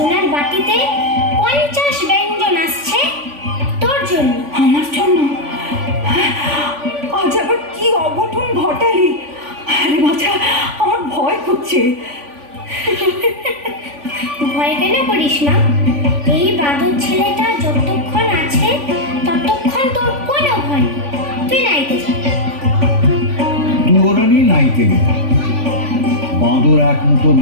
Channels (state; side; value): late; left; 3.5 ms